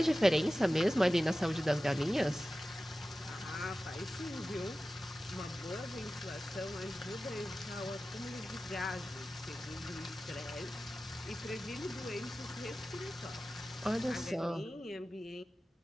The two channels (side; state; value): both; normal; correlation 0.95